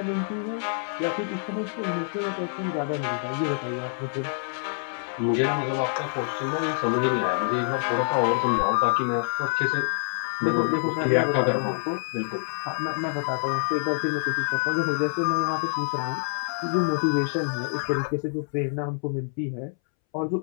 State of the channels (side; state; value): right; silent; 61 dB below the other